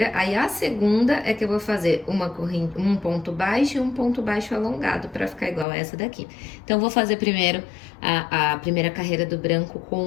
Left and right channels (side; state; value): right; drops out; at 5.7 s